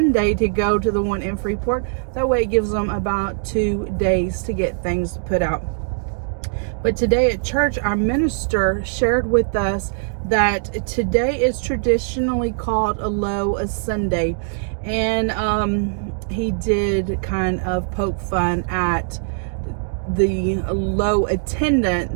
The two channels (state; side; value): silent; left; digital silence